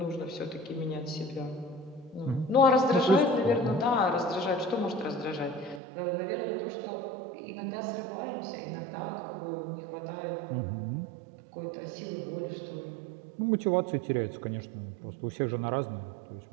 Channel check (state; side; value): drops out; left; at 5.8 s